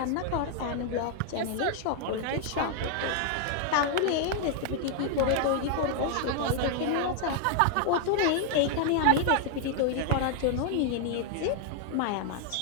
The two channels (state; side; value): different; both; correlation 0.00